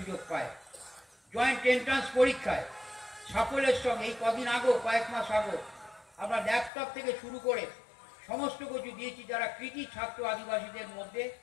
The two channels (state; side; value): drops out; right; at 6.7 s